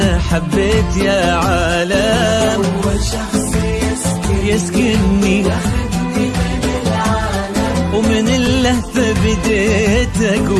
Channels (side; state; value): both; identical; correlation 1.00